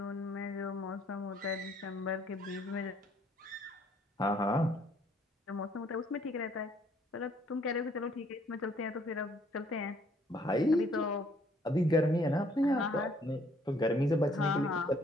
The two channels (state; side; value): normal; both; correlation 0.64